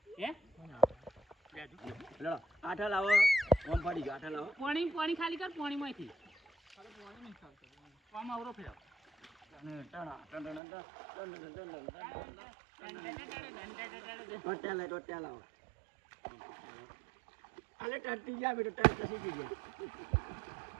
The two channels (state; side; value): drops out; left; at 10.6 s